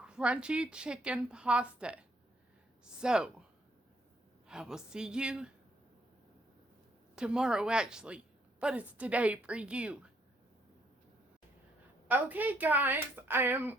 chicken pasta. So, I will see you tomorrow actually, but it's today for you. Okay guys, I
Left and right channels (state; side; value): normal; both; correlation 0.70